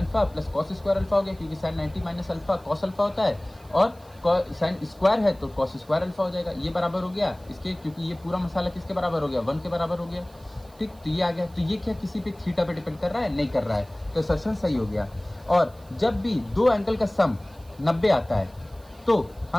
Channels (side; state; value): right; noise; hiss, 28 dB below the sound